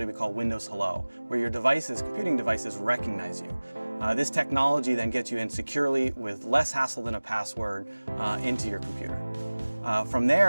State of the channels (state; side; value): inverted; both; correlation -1.00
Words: we call Windows Hello, where your computing devices recognize you. This technology then gets you in securely with less hassle than a password into your computer. From